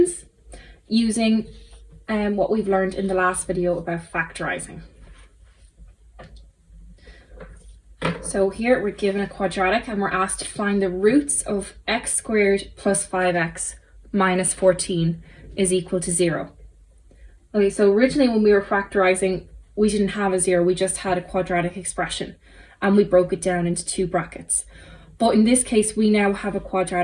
using what we've learned in the last video about factorising. So here we're given a quadratic and we're asked to find the roots of x squared plus 5x minus 14 is equal to 0. Okay, so originally when we were factorising, we didn't have a 0, we just had a quadratic expression and we broke it down into two brackets. But in this case, we now have a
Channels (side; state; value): both; identical; correlation 1.00